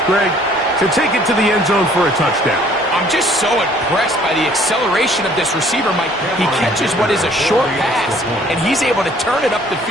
Greg, to take it to the end zone for a touchdown. I'm just so impressed by the acceleration of this receiver, Mike. He catches what is a short pass, and he's able to turn it up the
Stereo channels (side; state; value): both; normal; correlation 0.58